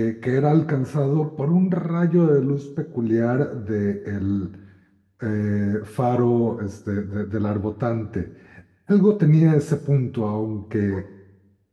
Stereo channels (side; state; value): both; identical; correlation 1.00